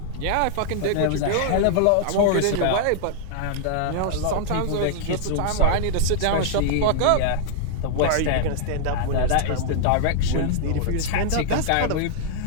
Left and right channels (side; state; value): both; different; correlation -0.01